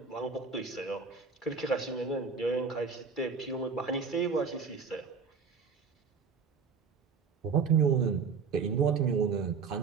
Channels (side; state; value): left; quieter; 5.4 dB